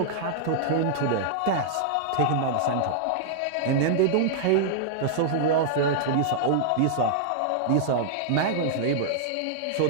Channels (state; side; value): different; both; correlation -0.01